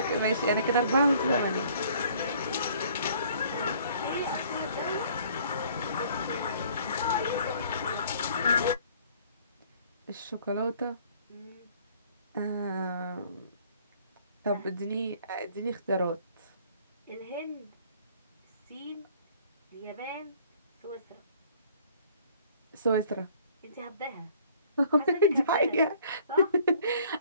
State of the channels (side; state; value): both; inverted; correlation -0.56